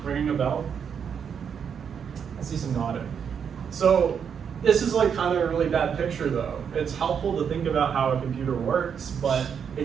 Ringing a bell? I see some nodding. So this is kind of a really bad picture though. It's helpful to think about how a computer works, but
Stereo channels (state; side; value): quieter; left; 7.3 dB